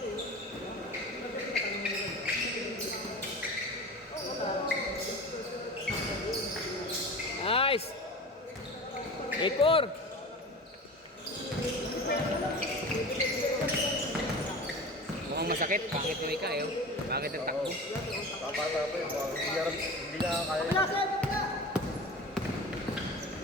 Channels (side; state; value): both; normal; correlation 0.34